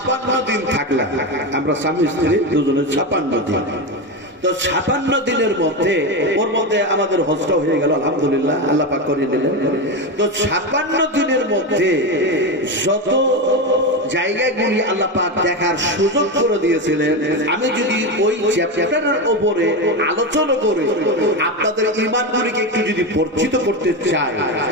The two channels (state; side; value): normal; both; correlation 0.15